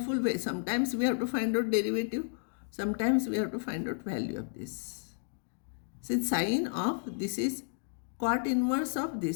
Sometimes we have to find out derivative. Sometimes we have to find out value of this. Since sin of this is cot inverse of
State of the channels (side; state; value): right; silent; digital silence